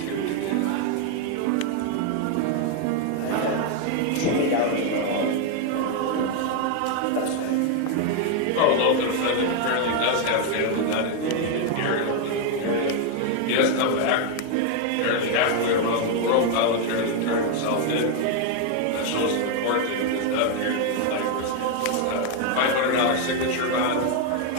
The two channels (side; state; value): both; different; correlation 0.01